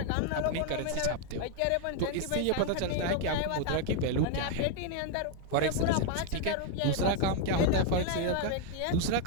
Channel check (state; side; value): different; both; correlation 0.00